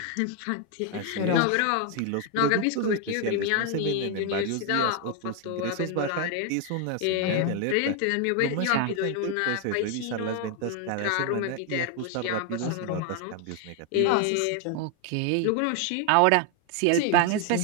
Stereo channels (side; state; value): both; different; correlation 0.01